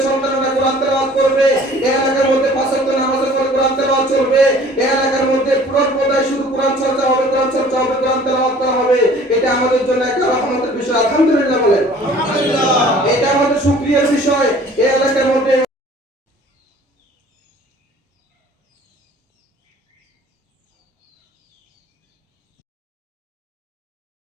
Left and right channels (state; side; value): normal; both; correlation 0.50